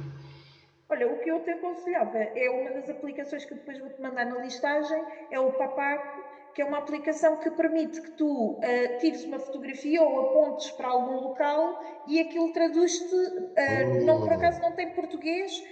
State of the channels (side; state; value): both; identical; correlation 1.00